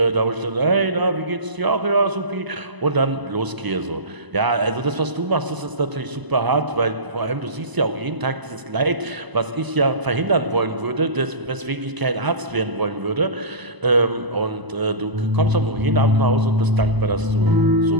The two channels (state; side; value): late; left; 1.0 ms